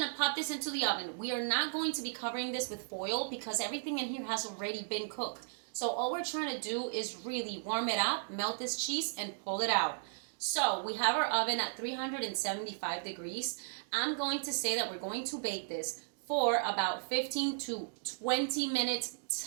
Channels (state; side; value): silent; left; digital silence